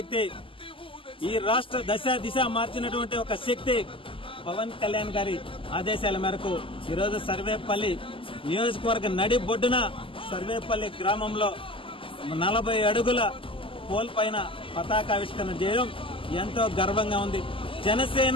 ఈ రాష్ట్ర దిశ మార్చినటువంటి ఒక శక్తి పవన్ కళ్యాణ్ గారి ఆదేశాల మేరకు ఈరోజు సర్వేపల్లి నియోజకవర్గ నడి బొడ్డున సర్వేపల్లి గ్రామంలో 40 అడుగుల పోల్ పైన పతాకావిష్కరణ చేయడం ఎంతో గర్వంగా ఉంది.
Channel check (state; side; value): late; right; 0.25 ms